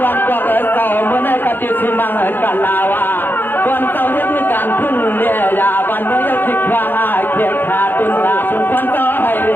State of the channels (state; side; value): late; right; 0.095 ms